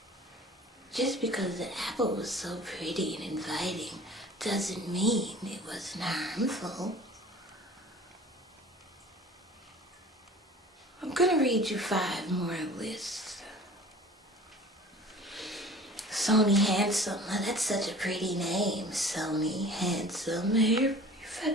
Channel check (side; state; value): both; normal; correlation 0.45